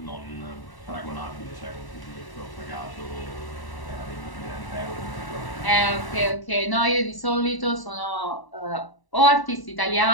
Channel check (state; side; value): late; right; 1.0 ms